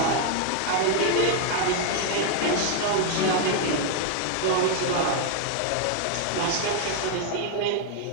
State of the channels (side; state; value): both; different; correlation 0.00